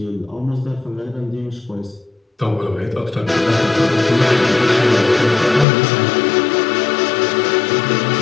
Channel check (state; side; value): drops out; right; at 5.7 s